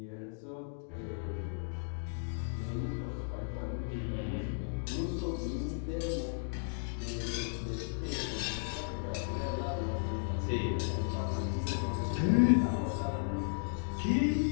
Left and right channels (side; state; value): right; silent; digital silence